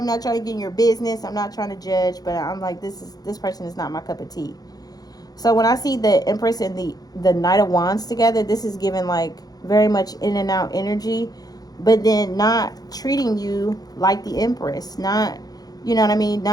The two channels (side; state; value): right; late; 0.19 ms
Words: not trying to get in your business. I'm not trying to judge, but I'm like, this person is not my cup of tea. So when I see the Empress and the Knight of Wands together, this is giving like very much in and out energy, but then not treating you like the Empress, not, you know what I mean,